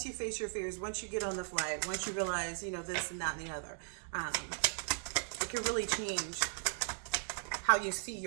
you face your fears, once you get on the flight, once you realize, you know, this and that and the other, it can really change how you see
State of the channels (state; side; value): silent; left; 53 dB below the other